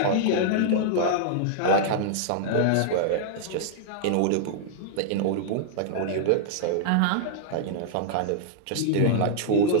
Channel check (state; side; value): different; both; correlation -0.01